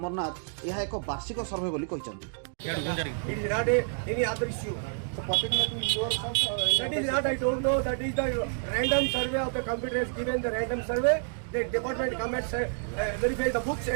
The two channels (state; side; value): silent; left; digital silence